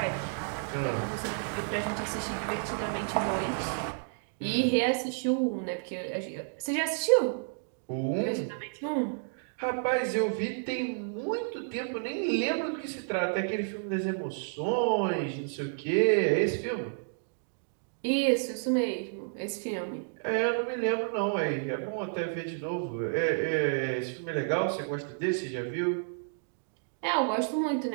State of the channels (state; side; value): silent; left; digital silence